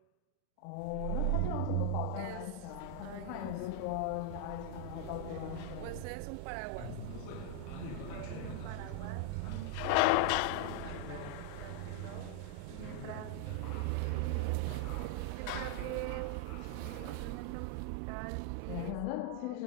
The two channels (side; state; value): both; different; correlation 0.00